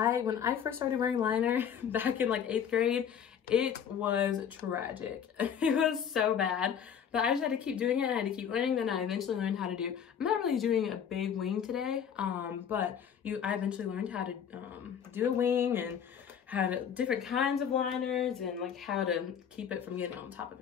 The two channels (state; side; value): quieter; right; 8.1 dB